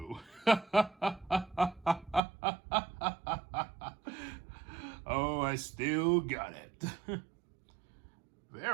Oh, I still got it.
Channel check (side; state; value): left; drops out; at 2.2 s